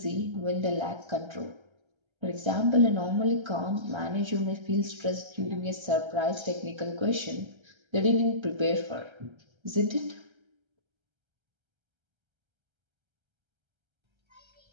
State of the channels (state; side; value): late; left; 1.3 ms